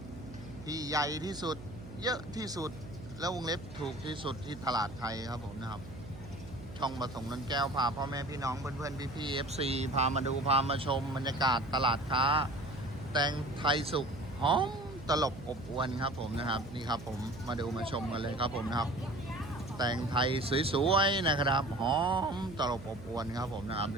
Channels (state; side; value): noise; right; hum, 14 dB below the sound